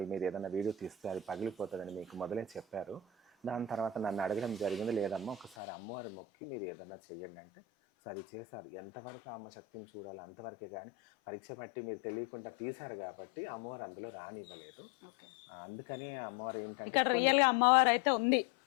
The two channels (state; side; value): drops out; right; at 5.6 s